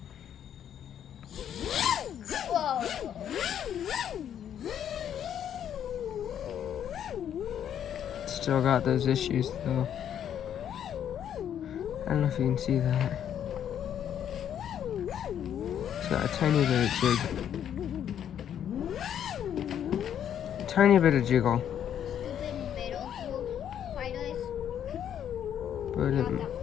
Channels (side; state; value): right; quieter; 9.6 dB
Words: Still got those issues though. I don't know if you can see that. It's got a tiny bit of jig. Tiny bit of jiggle. But it